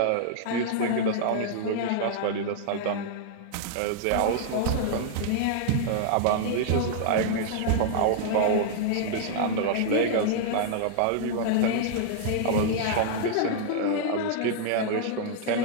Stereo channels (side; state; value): both; different; correlation -0.01